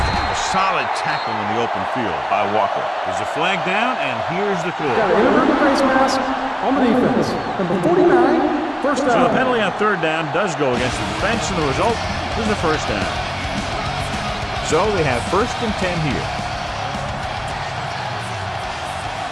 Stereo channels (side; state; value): both; identical; correlation 1.00